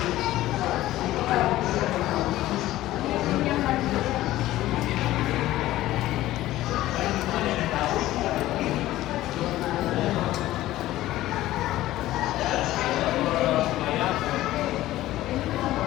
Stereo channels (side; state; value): right; quieter; 15.4 dB